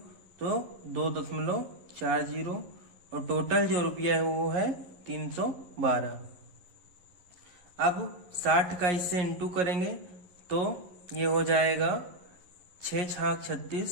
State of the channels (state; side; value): late; left; 11 ms